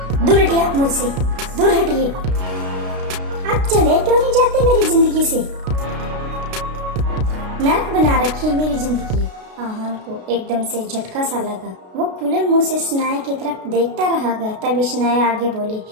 दूर हटिए आप मुझसे, दूर हटिए। आप चले क्यों नहीं जाते मेरी जिंदगी से? नर्क बना रखी है मेरी जिंदगी। आहान को एकदम से झटका सा लगा। वो खुले मुंह से शनाया की तरफ देखता रह गया। तभी शनाया आगे बोली,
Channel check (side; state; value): left; late; 32 ms